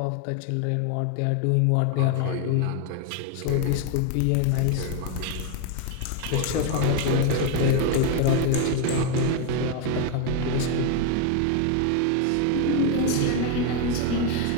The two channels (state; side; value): different; both; correlation 0.01